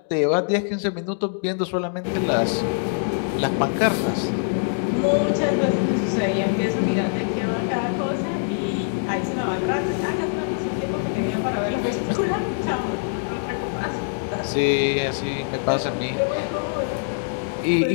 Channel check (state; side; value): silent; right; digital silence